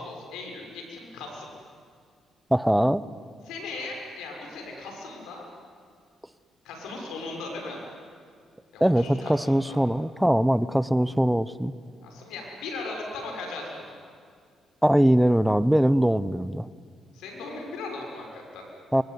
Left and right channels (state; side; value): normal; both; correlation 0.98